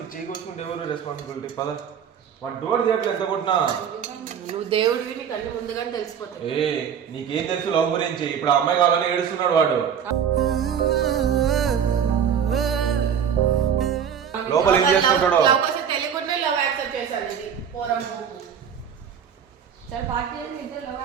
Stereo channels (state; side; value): quieter; left; 8.0 dB